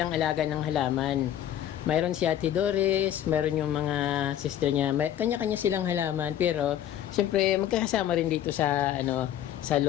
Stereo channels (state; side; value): quieter; right; 11.0 dB